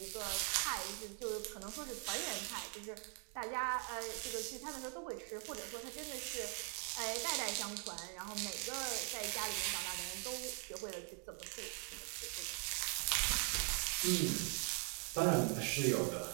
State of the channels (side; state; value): left; quieter; 39.8 dB